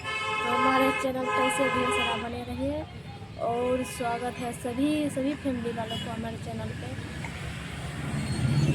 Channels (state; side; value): identical; both; correlation 1.00